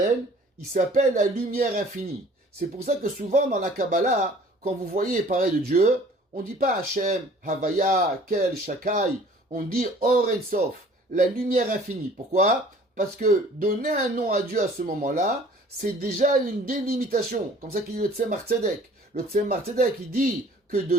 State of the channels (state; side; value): normal; both; correlation 0.51